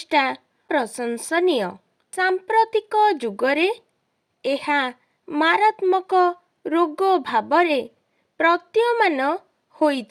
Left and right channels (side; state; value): both; identical; correlation 1.00